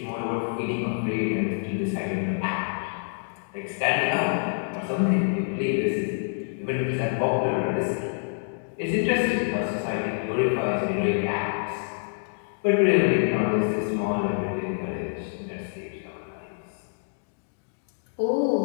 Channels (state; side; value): silent; right; digital silence